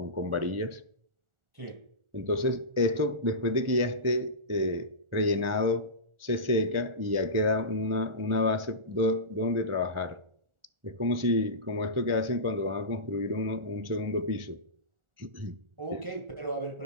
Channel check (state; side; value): late; left; 1.4 ms